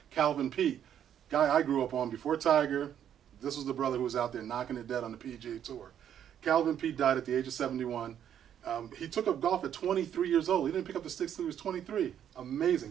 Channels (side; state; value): left; quieter; 9.7 dB